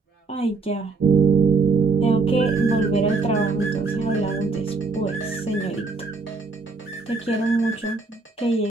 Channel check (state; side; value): quieter; left; 4.0 dB